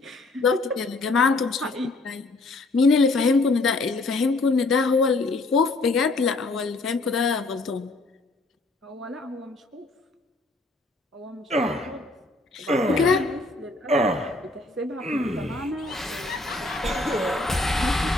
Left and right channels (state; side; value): quieter; right; 3.1 dB